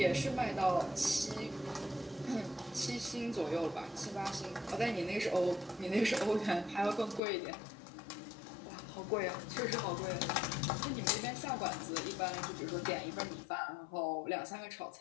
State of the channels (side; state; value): right; drops out; at 7.2 s